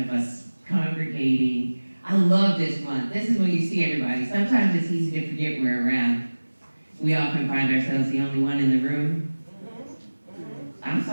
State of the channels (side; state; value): both; inverted; correlation -1.00